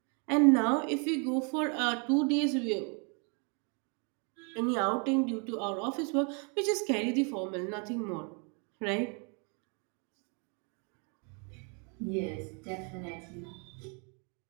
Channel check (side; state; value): left; quieter; 36.8 dB